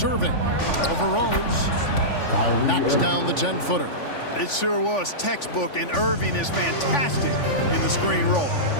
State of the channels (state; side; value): late; right; 3.5 ms